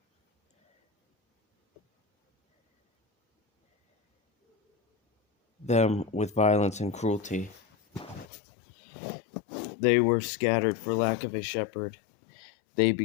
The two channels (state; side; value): drops out; right; at 8.2 s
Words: them with violence and cruelty. They were scattered for lack of a shepherd. They